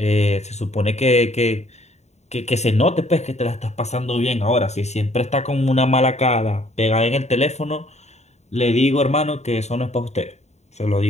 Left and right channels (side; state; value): right; late; 0.32 ms